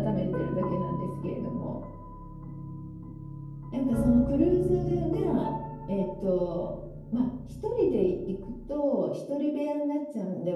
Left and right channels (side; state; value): both; identical; correlation 1.00